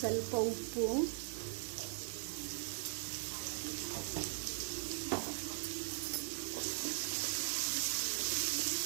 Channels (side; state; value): left; silent; digital silence